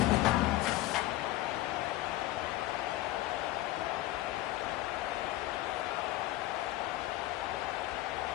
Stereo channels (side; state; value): right; quieter; 16.2 dB